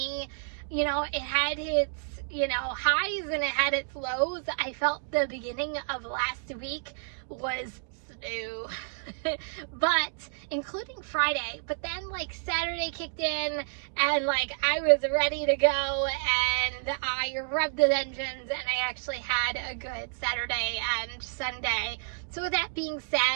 it had its highs and it had its lows. I felt the beginning of last week was slow, but including Friday, but then Saturday kicked in and I was ready to go and I revved the engines and I actually had a good Saturday and Sunday. So with that being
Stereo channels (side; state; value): left; silent; digital silence